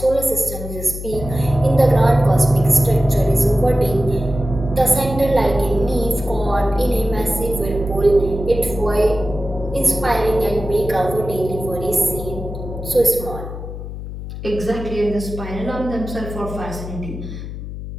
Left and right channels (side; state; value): left; noise; hum, 9 dB below the sound